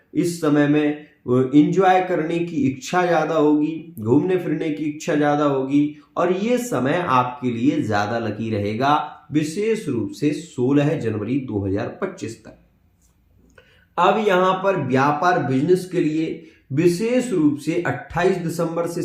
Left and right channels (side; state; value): both; identical; correlation 1.00